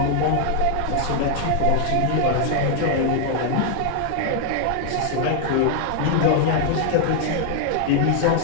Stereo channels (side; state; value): both; different; correlation 0.00